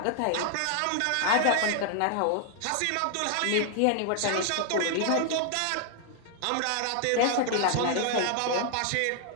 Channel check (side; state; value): both; different; correlation 0.00